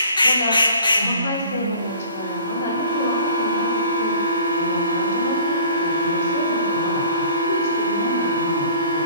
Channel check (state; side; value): inverted; both; correlation -0.49